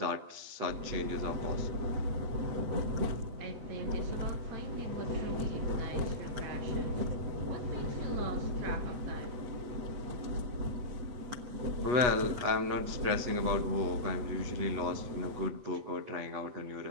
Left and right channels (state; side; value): late; left; 8.3 ms